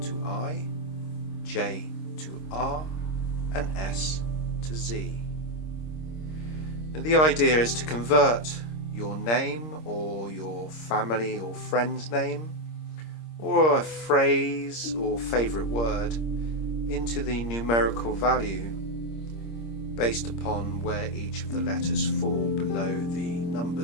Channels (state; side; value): late; right; 26 ms